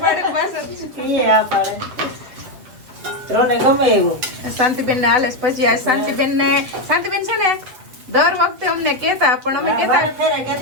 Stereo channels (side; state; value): left; late; 7.9 ms